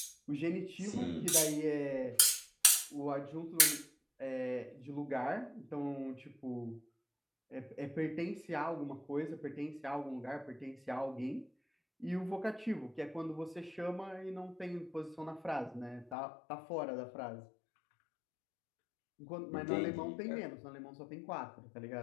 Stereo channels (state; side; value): drops out; right; at 16.2 s